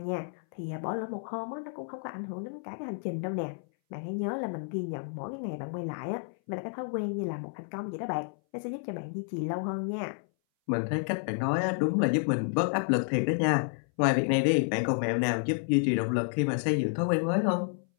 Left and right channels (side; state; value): right; silent; 58 dB below the other